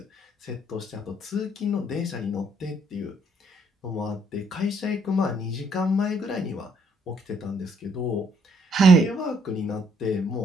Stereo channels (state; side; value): normal; both; correlation 0.67